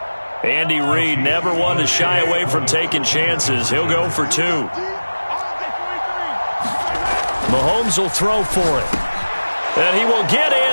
Andy Reid never one to shy away from taking chances. He'll go for 2. Mahomes will throw for it. And he will get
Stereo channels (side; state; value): both; inverted; correlation -1.00